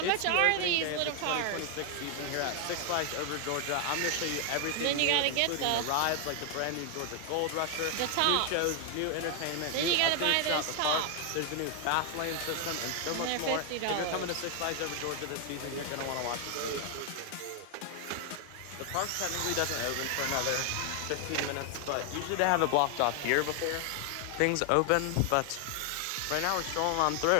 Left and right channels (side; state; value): both; different; correlation 0.00